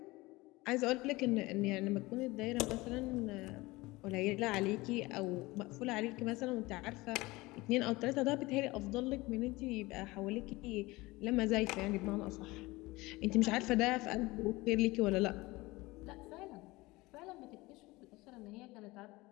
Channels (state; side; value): quieter; right; 21.3 dB